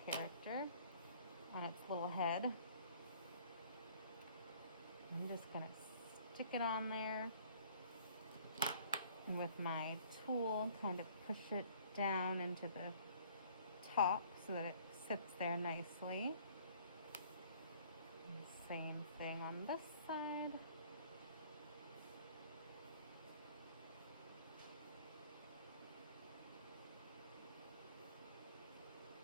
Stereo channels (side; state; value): both; inverted; correlation -0.56